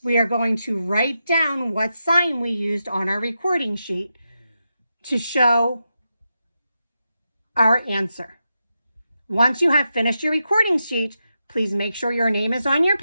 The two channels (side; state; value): both; inverted; correlation -0.88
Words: we are going to write down what sign we used on our recording sheet to show our answer. Once you have finished your recording sheet, please make sure your name is on your